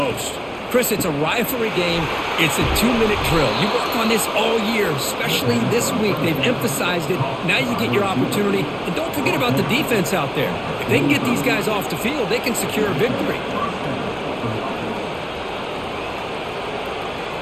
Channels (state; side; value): identical; both; correlation 1.00